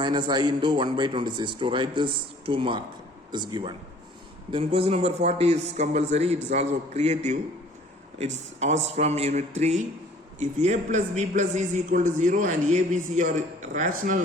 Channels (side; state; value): both; normal; correlation 0.53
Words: I into 1 by 26. To write this, 2 mark is given. Then question number 40 is compulsory. It is also creative. It's asked from unit 3. If a plus b plus c is equal to 0 and a, b, c are rational